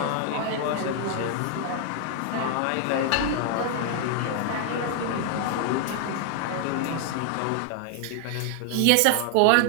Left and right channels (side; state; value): both; different; correlation 0.00